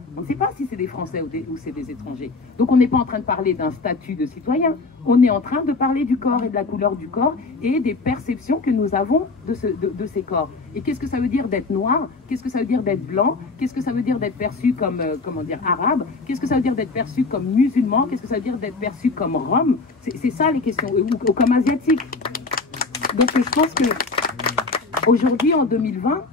on ne sait pas si c'est des Français ou c'est des étrangers. Donc on n'est pas en train de parler d'un statut de citoyen, on est en train de parler du corps et de la couleur du corps et des perceptions que nous avons de ces corps. Et qu'est-ce que ça veut dire d'être noir? Qu'est-ce que ça veut dire d'être blanc? Qu'est-ce que ça veut dire d'être perçu comme, arabe? Qu'est-ce que ça veut dire d'être perçu comme musulman? Qu'est-ce que ça veut dire d'être perçu comme rom? C'est ça les questions, ou comme asiatique. Donc je pense que aujourd'hui, en 2020,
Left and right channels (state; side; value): quieter; right; 3.9 dB